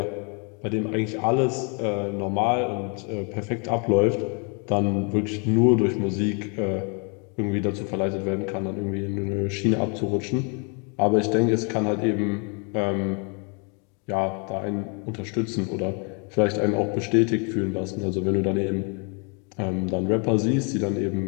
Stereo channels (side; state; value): right; quieter; 36.3 dB